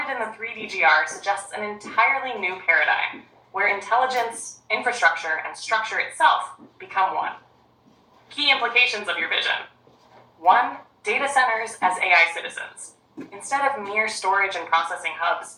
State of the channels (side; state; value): both; identical; correlation 1.00